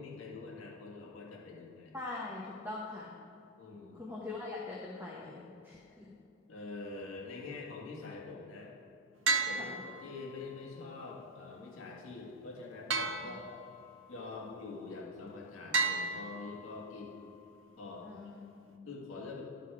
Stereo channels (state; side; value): normal; both; correlation -0.07